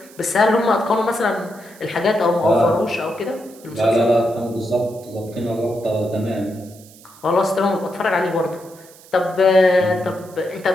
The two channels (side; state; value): right; noise; hiss, 23 dB below the sound